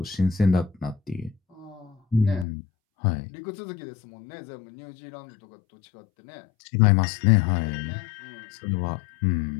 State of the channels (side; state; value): right; drops out; at 2.5 s